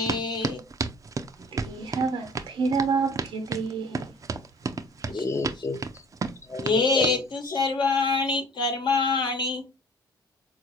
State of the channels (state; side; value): normal; both; correlation 0.47